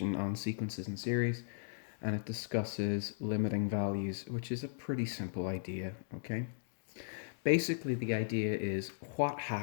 on sequences and series, and it discusses limiting values, which is a pretty simple idea, okay? Basically, the idea is what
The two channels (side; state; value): right; silent; digital silence